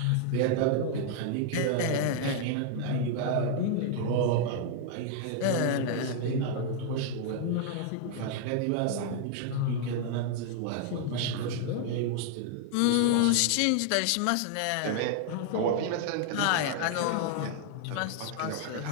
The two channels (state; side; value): different; both; correlation 0.00